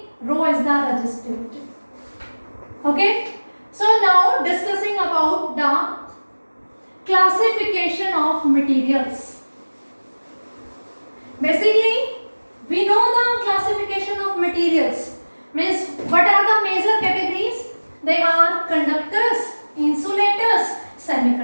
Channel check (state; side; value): inverted; both; correlation -1.00